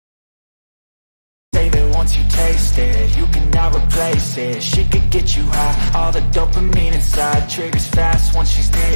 Once you taste it, you cannot replace it. She could get you high, all the dopamine inside triggers fast once she's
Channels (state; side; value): inverted; both; correlation -1.00